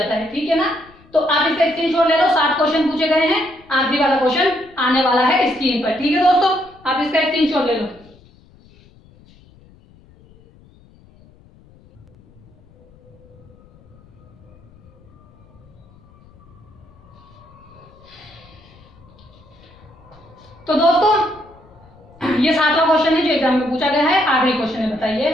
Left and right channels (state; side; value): noise; left; rumble, 27 dB below the sound